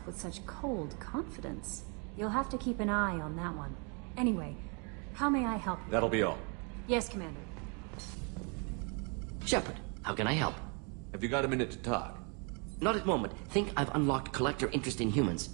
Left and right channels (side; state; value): left; quieter; 35.5 dB